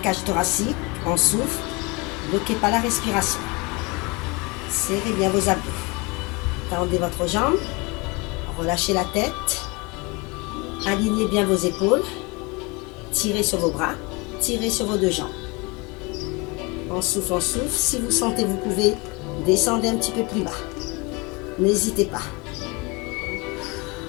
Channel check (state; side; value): quieter; right; 26.9 dB